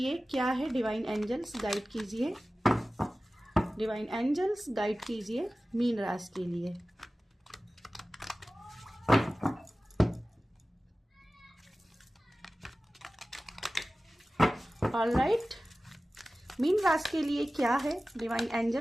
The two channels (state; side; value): normal; both; correlation 0.96